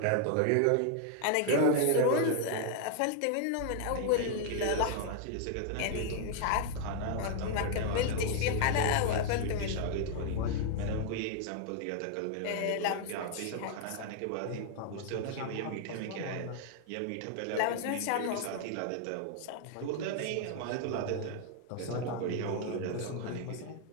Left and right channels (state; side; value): different; both; correlation 0.00